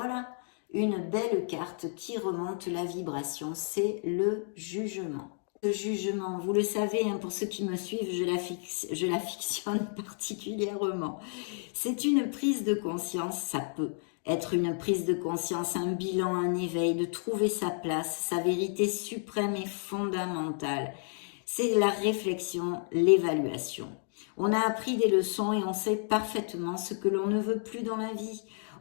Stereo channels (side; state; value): right; silent; 57 dB below the other